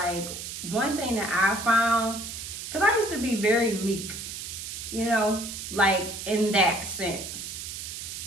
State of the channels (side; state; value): right; noise; hiss, 8 dB below the sound